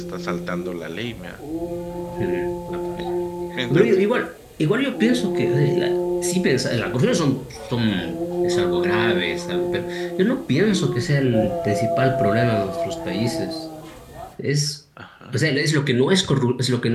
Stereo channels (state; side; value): identical; both; correlation 1.00